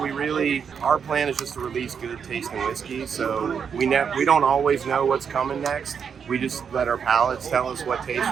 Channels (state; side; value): quieter; left; 6.9 dB